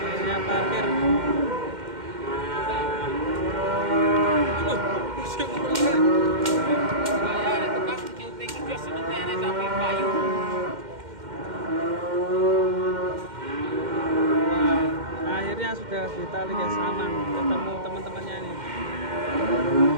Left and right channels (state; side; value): late; left; 2.1 ms